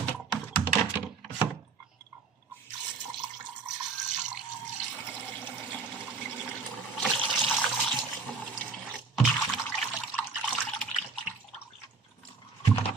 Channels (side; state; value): left; quieter; 4.5 dB